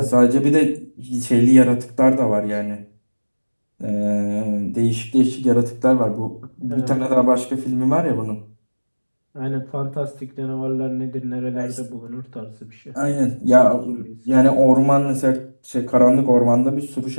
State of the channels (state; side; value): inverted; both; correlation -1.00